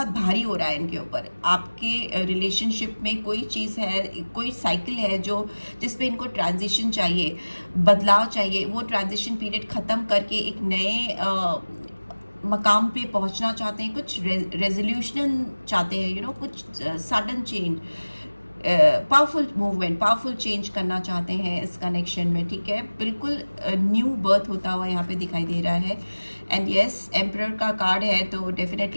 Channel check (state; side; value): inverted; both; correlation -1.00